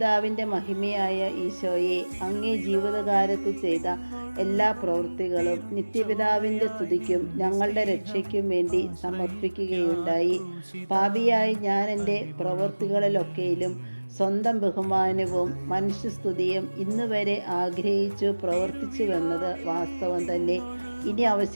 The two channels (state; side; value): inverted; both; correlation -1.00